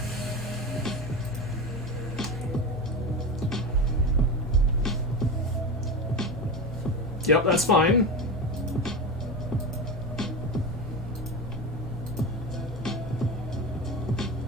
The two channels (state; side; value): noise; left; hum, 12 dB below the sound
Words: Yep, that's fine.